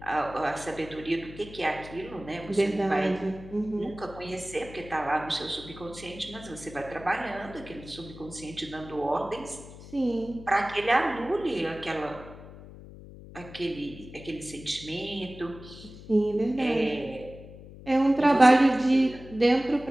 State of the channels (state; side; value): noise; left; hum, 16 dB below the sound